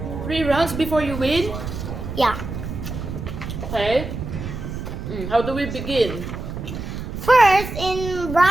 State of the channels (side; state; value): right; noise; rumble, 7 dB below the sound